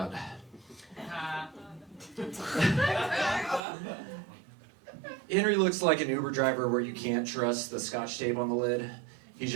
Henry looks like an Uber driver where you can't trust the scotch tape on the lid. He's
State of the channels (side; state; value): left; drops out; at 3.6 s